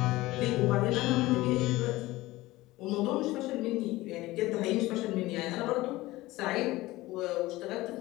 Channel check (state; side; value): quieter; right; 18.6 dB